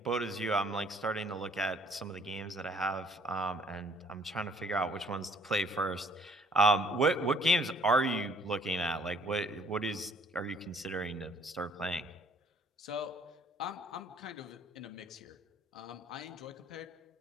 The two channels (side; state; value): both; normal; correlation 0.60